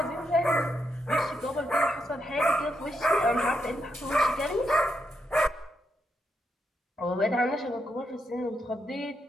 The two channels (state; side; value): normal; both; correlation 0.82